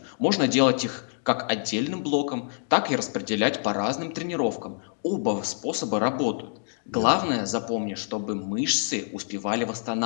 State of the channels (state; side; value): silent; right; digital silence